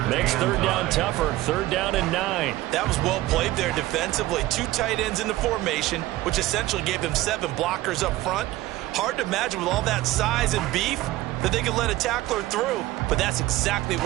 makes 3rd down tougher. 3rd down and 9. That was well played there defensively. 2 tight ends in the formation, which essentially gave them 7 blockers up front. Hard to imagine with all that size and beef that they could let a tackler through. But that's exactly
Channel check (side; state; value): left; quieter; 16.9 dB